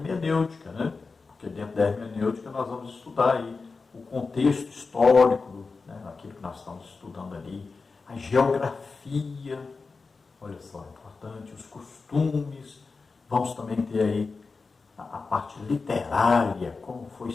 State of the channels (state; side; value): quieter; right; 4.3 dB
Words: né? Porque dentro da hermenêutica nós vamos estudar aí o contexto histórico, né, aquilo que nós estamos estudando ali, a geografia, olha só, importante, os costumes, vamos também ter aí a parte literária, como foi